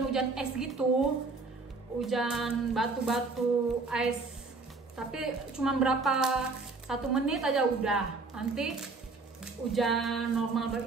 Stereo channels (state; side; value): quieter; left; 3.9 dB